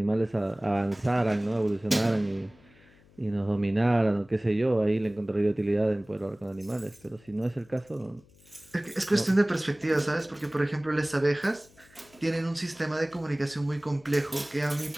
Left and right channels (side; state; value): left; noise; hum, 28 dB below the sound